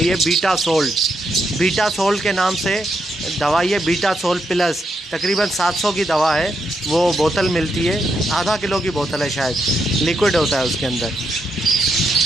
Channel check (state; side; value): normal; both; correlation 0.80